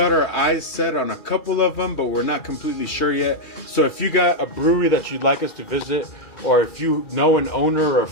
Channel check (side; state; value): right; late; 2.4 ms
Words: our eyes set on a couple of them, but we're not completely sure yet. So if you got a brewery that you'd like us to visit, or if you know an owner or a